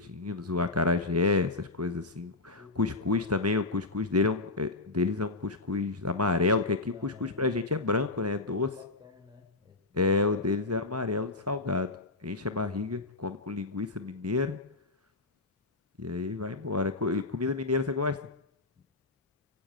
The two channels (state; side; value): quieter; right; 3.1 dB